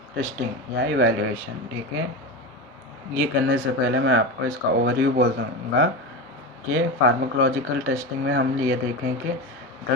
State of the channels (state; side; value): normal; both; correlation 0.21